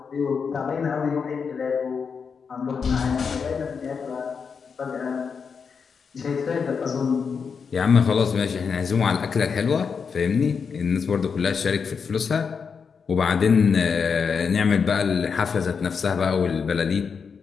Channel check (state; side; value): quieter; right; 5.9 dB